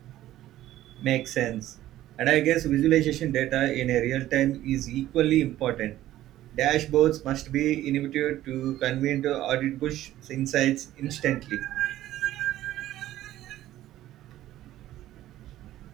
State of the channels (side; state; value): left; quieter; 14.1 dB